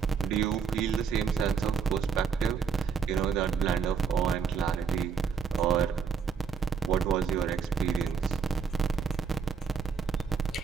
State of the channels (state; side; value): quieter; left; 6.2 dB